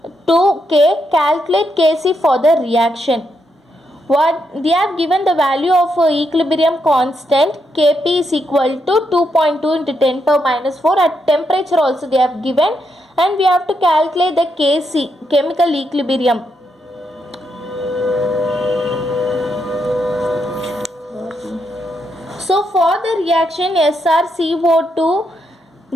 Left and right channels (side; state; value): both; normal; correlation 0.80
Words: K. Calculate Kc for the reaction. What they have given the value of equilibrium constant Kp is equal to 2.2 into 10 power minus 4. At temperature also they have given, and we have to calculate the Kc, chemical equilibrium. So for the reaction SrCO2